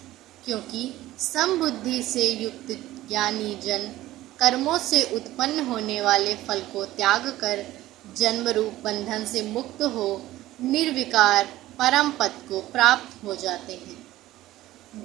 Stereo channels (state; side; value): quieter; left; 15.7 dB